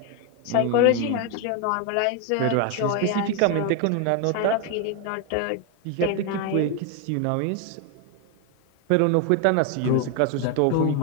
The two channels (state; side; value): different; both; correlation 0.01